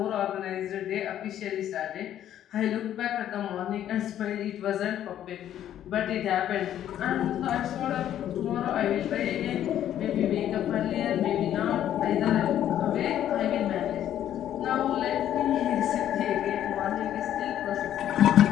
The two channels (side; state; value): right; quieter; 11.1 dB